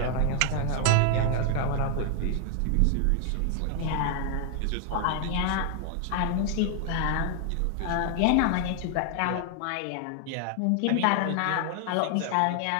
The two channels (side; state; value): both; different; correlation 0.00